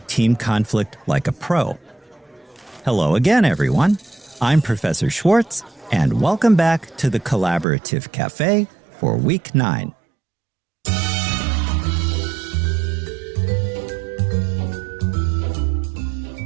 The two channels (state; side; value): drops out; left; at 7.7 s